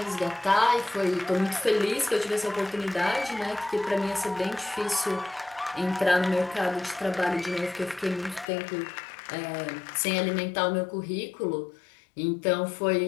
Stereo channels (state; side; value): drops out; right; at 8.5 s